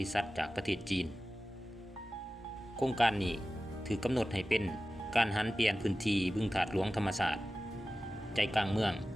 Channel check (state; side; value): normal; both; correlation 0.95